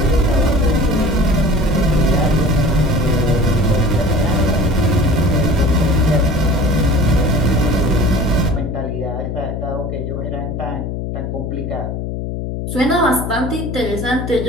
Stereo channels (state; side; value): noise; left; hum, 4 dB below the sound